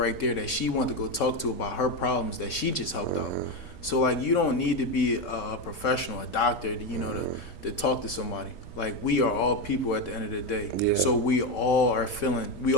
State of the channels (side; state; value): right; late; 3.8 ms